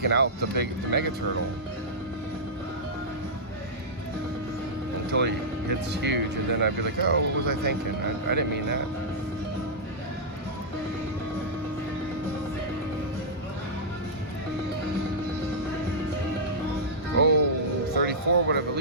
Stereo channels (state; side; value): normal; both; correlation -0.12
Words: out the mega turtle until he hits huge, and then I'd be like, oh, what was I thinking? I didn't mean that. Oh, 34 would have at